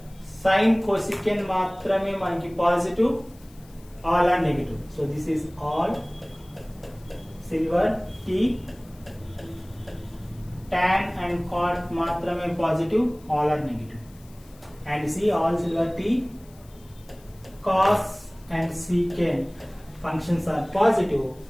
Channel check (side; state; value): left; noise; hiss, 27 dB below the sound